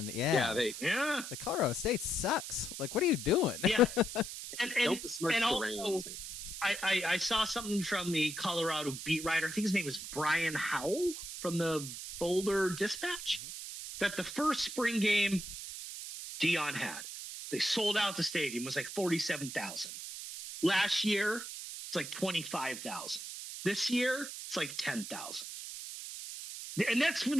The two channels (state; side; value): noise; right; hiss, 8 dB below the sound